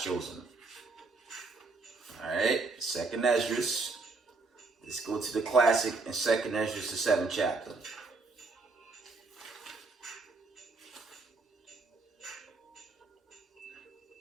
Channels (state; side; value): quieter; left; 3.8 dB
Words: chosen. All right, 2nd Esdras Let's go to the classic in 2nd Ezra, the 7th chapter.